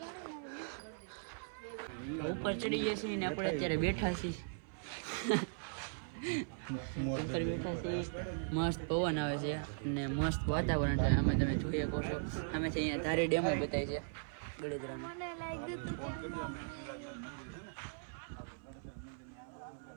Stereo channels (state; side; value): silent; left; 52 dB below the other